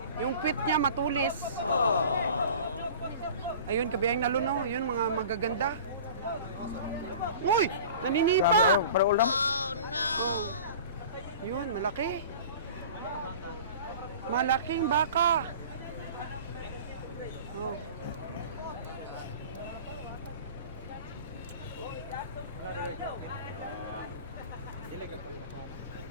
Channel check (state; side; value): inverted; both; correlation -0.40